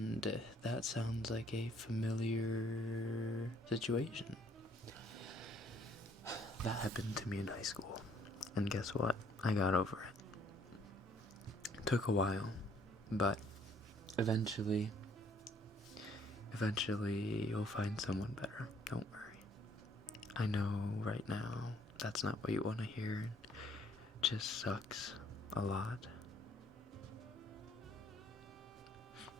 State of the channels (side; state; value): both; normal; correlation 0.63